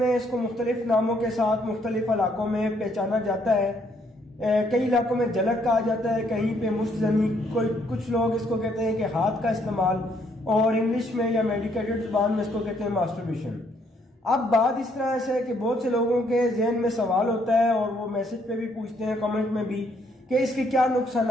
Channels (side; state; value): both; normal; correlation 0.69